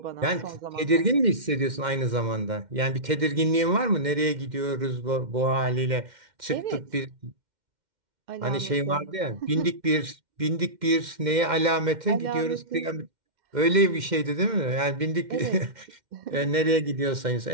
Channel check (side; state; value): left; late; 2.1 ms